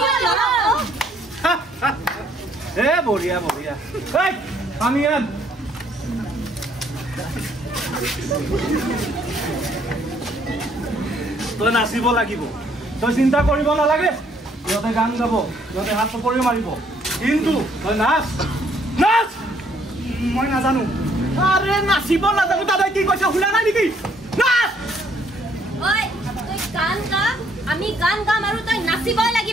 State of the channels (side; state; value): both; normal; correlation 0.66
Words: Boria. Hey, Amian. তই নাচিব লাগিব তই চিন্তা কৰিব নালাগে ইহঁতে গান গাব ইহঁতে হাত চপৰি মাৰিব কিন্তু তই নাচ মই নাজানো আৰে নাচিব নাজানো দাদাই কি কৈছে শুনা নাই নেকি নাচ ঐ তই গান গা আমি গান গাম আৰু তই নাচিবই